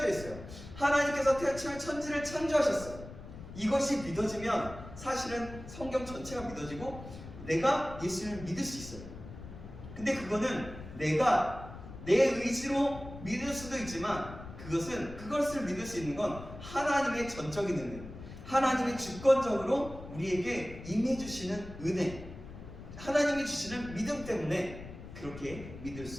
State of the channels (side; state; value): left; noise; rumble, 13 dB below the sound